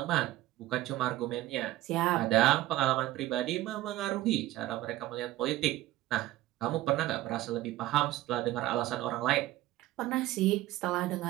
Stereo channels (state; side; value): quieter; left; 15.9 dB